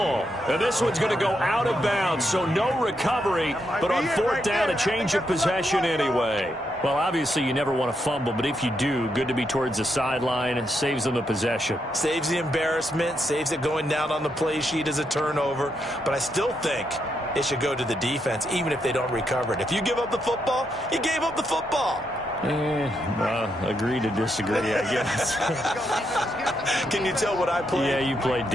And this one's going to go out of bounds, so no recovery, but on 4th down, a change of possession anyway. Well, obviously, you never want to fumble, but if you do, good to be towards the sideline. It saves them the possession. Saves the embarrassment, saves it going down on the play sheet as a turnover. But I still think it should go to the defense, even if they don't recover it. If you give up the football, you gave up the football. Agree to disagree, I guess. Can you tell what I played? Yeah, you played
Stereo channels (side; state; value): both; normal; correlation 0.80